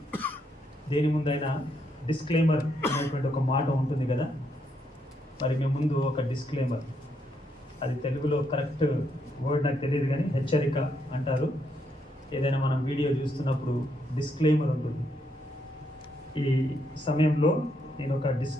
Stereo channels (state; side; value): normal; both; correlation 0.76